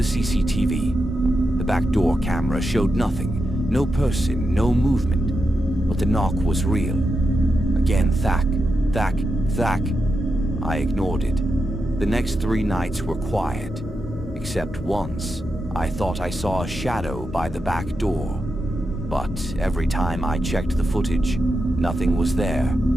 CCTV. The back door camera showed nothing. No person, no movement. But the knock was real. Again, thack, thack, thack. I ignored it. The next 3 nights were quiet. Except once, I thought I saw a shadow by the back door. But every time I checked the footage, nothing was there.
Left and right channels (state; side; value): normal; both; correlation 0.87